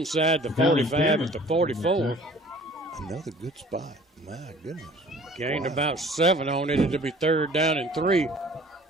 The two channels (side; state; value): both; normal; correlation 0.50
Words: the 45 at the 44. Another good spot. My goodness. Gained about 7 on it. It'll be third down and 3